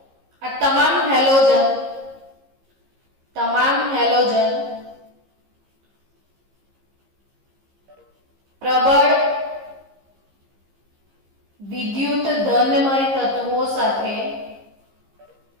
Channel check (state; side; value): late; left; 15 ms